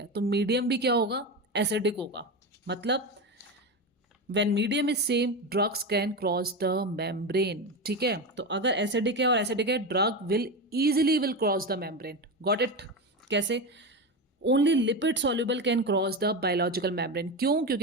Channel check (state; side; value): normal; both; correlation 0.18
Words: तो मीडियम भी क्या होगा, एसिडिक होगा। मतलब when medium is same drugs can cross the membrane, ठीक है। तो अगर एसिडिक है और एसिडिक है drug will easily will cross the membrane. Got it? कैसे? Only lipid soluble can cross the biological membrane. क्यों?